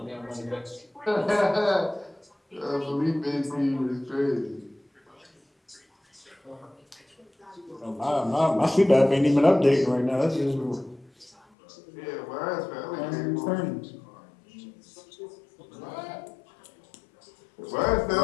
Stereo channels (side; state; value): right; drops out; at 11.4 s